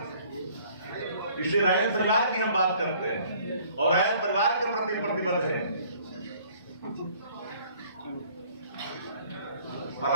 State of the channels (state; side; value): inverted; both; correlation -0.57